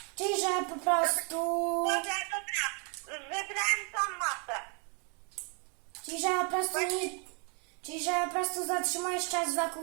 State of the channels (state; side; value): quieter; left; 37.4 dB